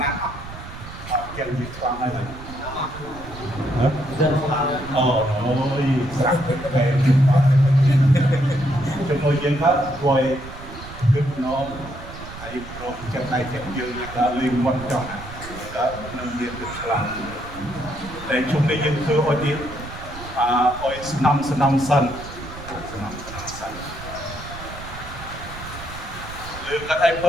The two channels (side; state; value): right; noise; rumble, 13 dB below the sound